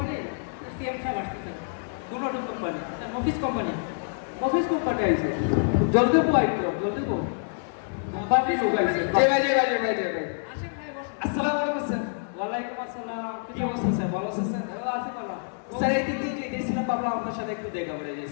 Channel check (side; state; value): right; silent; digital silence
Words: সিএম স্যার আসছে স্যার কোন ওষুধ company sir office company office company আইছে জলদি পো আইতো জলদি পো কোম্পানি লোক আইছে জি ভাই জি ভাই জি ভাই জি ভাই আসেন ভাই বসুন আসসালামু আলাইকুম স্যার। ওয়ালাইকুম আসসালাম কি অবস্থা স্যার, ভালো আছেন স্যার? ভালো আছি ভালো স্যার এই দিক দিয়ে যে গেছিলাম ভাবলাম আপনার সাথে একটু দেখা করে